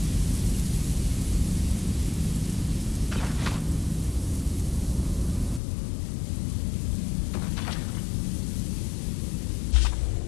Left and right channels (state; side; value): drops out; right; at 5.6 s